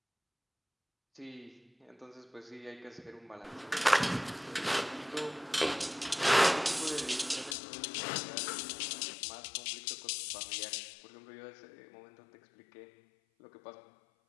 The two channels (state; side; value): drops out; right; at 7.6 s